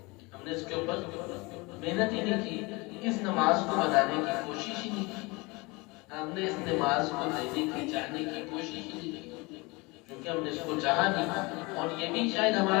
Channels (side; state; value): right; quieter; 25.5 dB